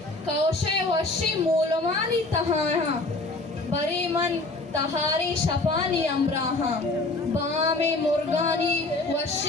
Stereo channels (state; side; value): quieter; right; 3.1 dB